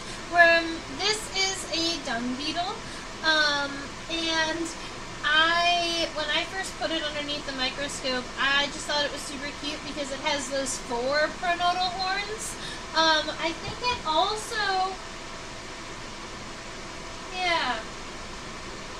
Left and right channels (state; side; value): identical; both; correlation 1.00